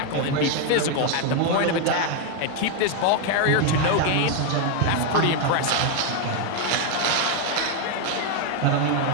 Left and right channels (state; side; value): different; both; correlation 0.01